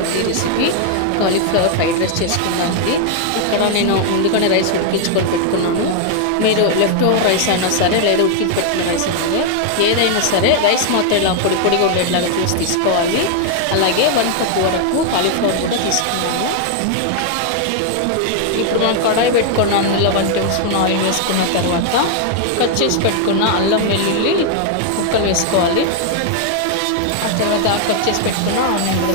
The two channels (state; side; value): different; both; correlation 0.00